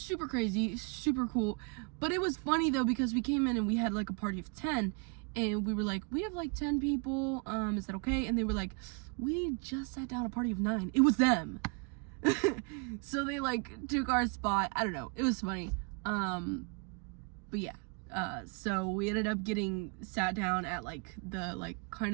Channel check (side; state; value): left; quieter; 34.8 dB